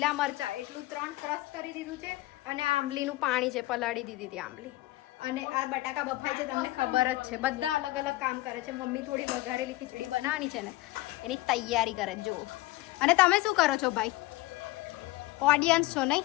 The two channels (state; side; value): quieter; right; 18.5 dB